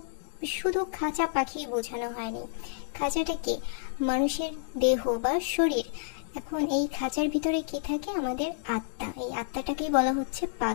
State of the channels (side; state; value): right; silent; digital silence